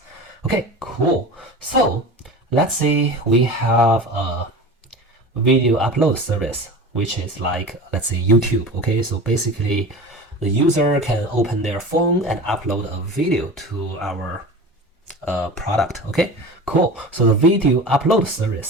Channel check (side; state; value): both; normal; correlation 0.34